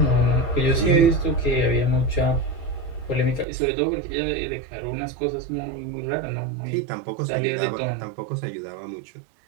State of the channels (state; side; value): drops out; left; at 3.5 s